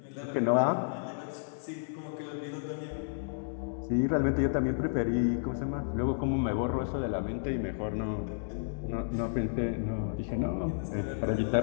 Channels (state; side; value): silent; right; digital silence